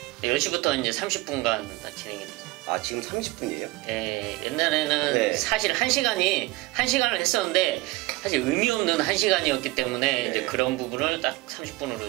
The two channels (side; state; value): left; quieter; 20.9 dB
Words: 네, 10시부터 이제 30분간 진행이 됩니다. 아, 지금 30분이에요? 네, 옛날에는 사실 1시간을 했었는데 사실 의미 없는 1시간이었기 때문에 이제 그런 부분을 딱 30분으로